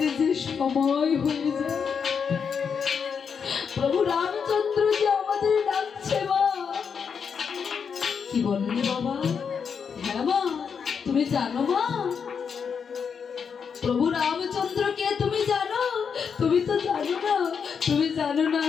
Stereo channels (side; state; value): right; quieter; 6.5 dB